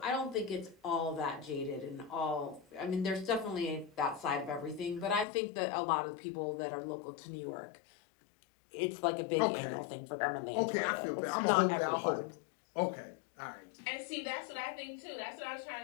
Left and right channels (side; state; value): right; drops out; at 5.2 s